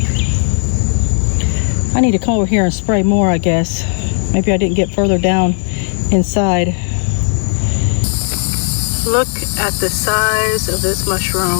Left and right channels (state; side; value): silent; right; digital silence